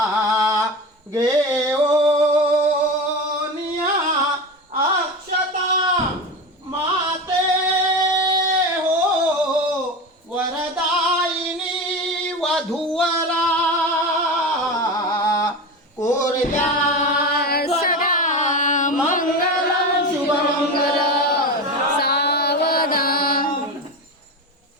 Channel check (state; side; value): normal; both; correlation 0.24